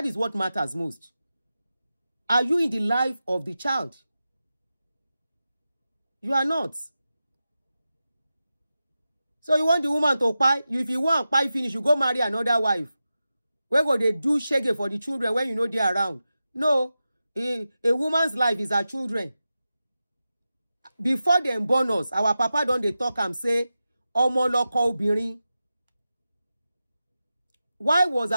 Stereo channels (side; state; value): both; inverted; correlation -0.92